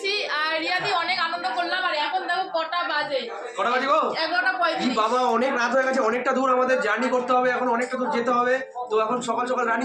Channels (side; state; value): both; identical; correlation 1.00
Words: আর রিয়াদি অনেক আনন্দ করলাম। আর এখন দেখো কটা বাজে, কটা বাজিবো? 11:35। বাবা অনেক রাত হয়ে গেছে, অনেকটা দূর আমাদের জার্নি করতে হবে, এখন অনেকটা দূর যেতে হবে। তো এখন সকাল সকাল